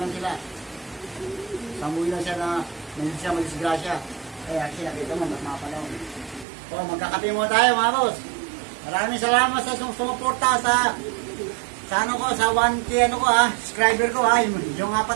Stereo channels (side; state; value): left; drops out; at 6.5 s